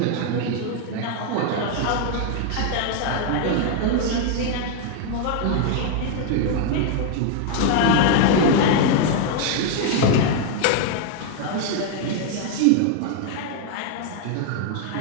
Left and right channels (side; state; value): both; different; correlation 0.00